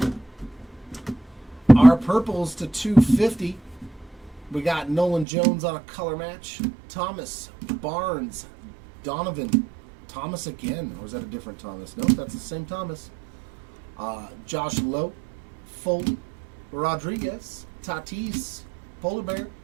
Our purples to 250. We got Nolan Jones on a color match. Thomas, Barnes, Donovan, Thomas again. Or is that a different Thomas? Nope, that's the same Thomas. Josh Lowe, Foley, Rodriguez, Tatis, Polar Bear,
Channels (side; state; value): left; drops out; at 5.2 s